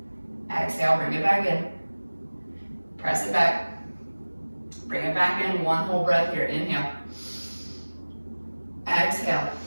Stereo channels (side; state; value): both; inverted; correlation -1.00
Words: Exhale, bring it back in. Press it back. Bring it back in, one whole breath here. Inhale. Exhale.